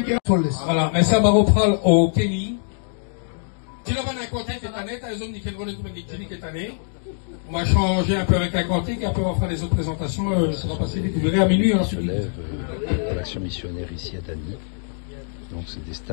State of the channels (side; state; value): right; silent; digital silence